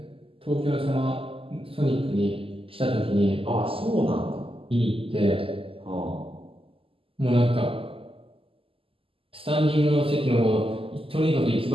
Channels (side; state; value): left; late; 0.26 ms